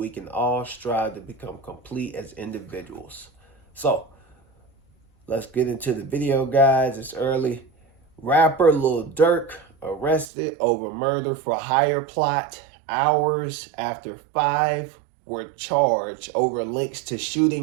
can all strive to become complete as individuals. So, let's get into the video, guys. It's early. Rapper Lil Durk arrested over murder for hire plot hours after 5 were charged over links to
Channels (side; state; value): left; drops out; at 10.2 s